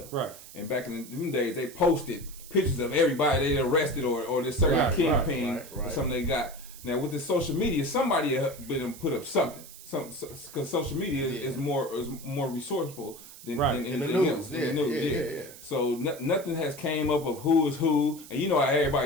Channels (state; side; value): noise; right; hiss, 17 dB below the sound